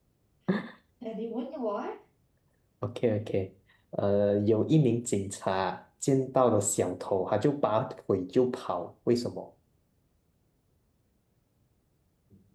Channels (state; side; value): identical; both; correlation 1.00